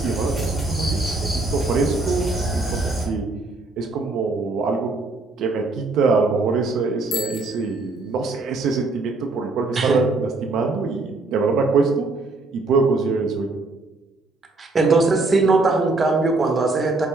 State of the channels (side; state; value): left; quieter; 3.3 dB